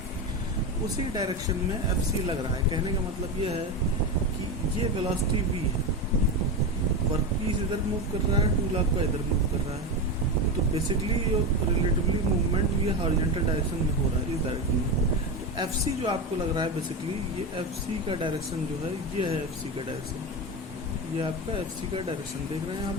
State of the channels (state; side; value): normal; both; correlation 0.17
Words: उसी डायरेक्शन में FC लग रहा है। कहने का मतलब ये है कि ये वेलोसिटी V है, वर्कपीस इधर मूव कर रहा है, टूल आपका इधर मूव कर रहा है। तो बेसिकली ये रिलेटिवली मूवमेंट ये हॉरिजॉन्टल डायरेक्शन में हो रहा है, इस डायरेक्शन में। तो FC जो आपको लग रहा है बेसिकली ये FC का डायरेक्शन जो है ये है FC का डायरेक्शन, ये आपका FC का डायरेक्शन देख रहे हैं यहाँ